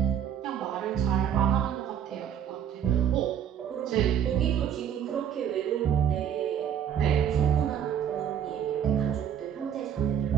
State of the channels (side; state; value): left; quieter; 9.0 dB